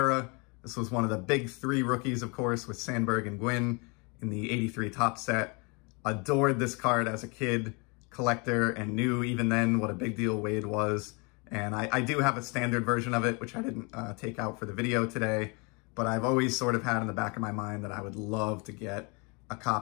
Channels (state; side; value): quieter; right; 30.8 dB